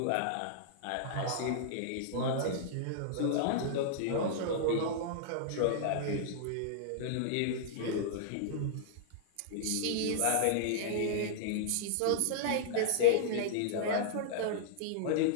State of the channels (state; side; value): different; both; correlation -0.02